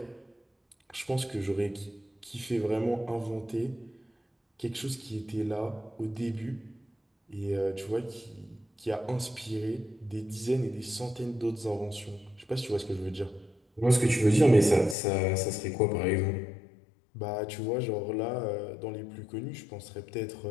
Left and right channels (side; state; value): right; drops out; at 15.0 s